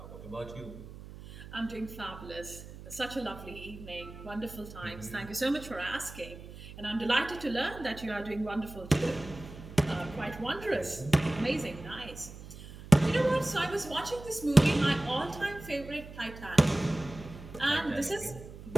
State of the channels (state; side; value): noise; right; hum, 14 dB below the sound